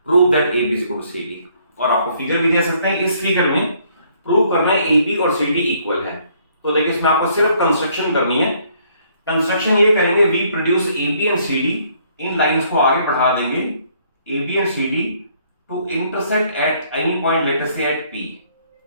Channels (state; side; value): inverted; both; correlation -0.65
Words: prove that AB is equal to CD। और आपको फिगर भी दे सकते हैं, इस फिगर में प्रूव करना है AB और CD इक्वल है। तो देखिए इसमें आपको सिर्फ कंस्ट्रक्शन करनी है। कंस्ट्रक्शन ये करेंगे, we produce AB and CD, इन लाइंस को आगे बढ़ा देंगे AB and CD to intersect at any point, let us say at P।